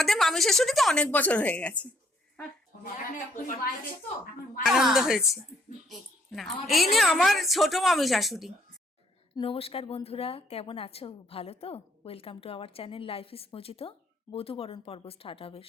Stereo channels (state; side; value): normal; both; correlation 0.66